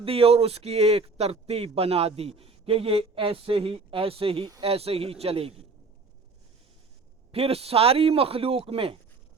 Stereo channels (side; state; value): left; quieter; 4.1 dB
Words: दी, और उसकी एक तरतीब बना दी कि ये ऐसे ही ऐसे ही ऐसे ही चलेगी। फिर सारी मखलूक में